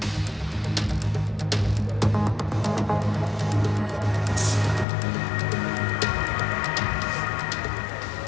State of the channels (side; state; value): right; drops out; at 4.9 s